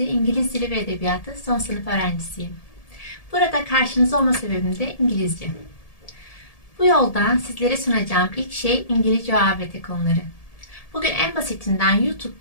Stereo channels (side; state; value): right; late; 1.7 ms